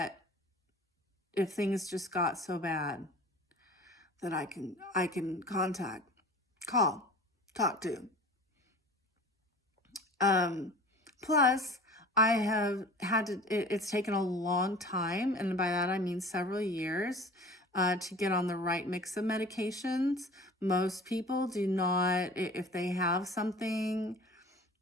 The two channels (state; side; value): normal; both; correlation 0.42